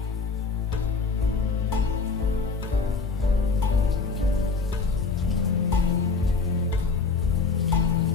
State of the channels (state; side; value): quieter; right; 4.5 dB